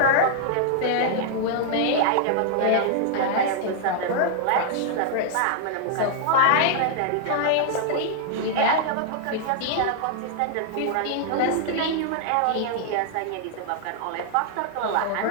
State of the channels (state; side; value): different; both; correlation -0.01